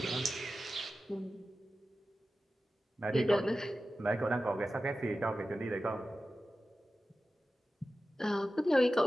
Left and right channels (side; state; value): both; normal; correlation 0.94